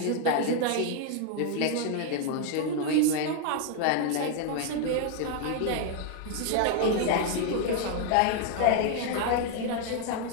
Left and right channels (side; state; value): both; different; correlation 0.00